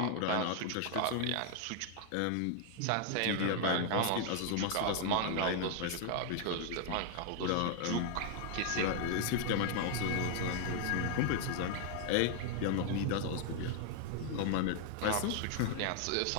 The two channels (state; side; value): different; both; correlation 0.00